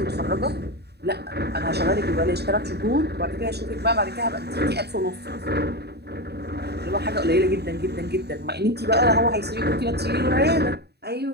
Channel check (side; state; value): left; late; 0.48 ms